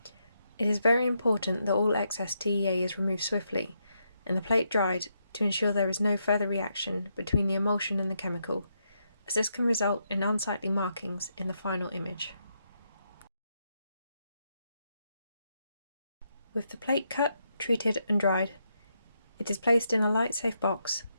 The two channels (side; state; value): both; inverted; correlation -0.80